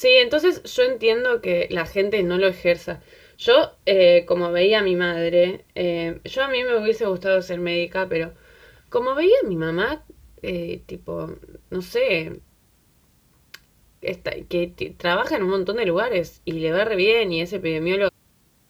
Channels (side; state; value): both; identical; correlation 1.00